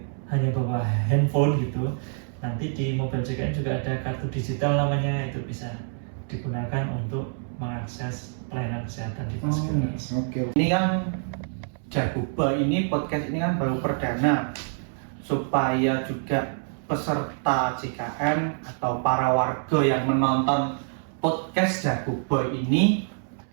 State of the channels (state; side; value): silent; left; 61 dB below the other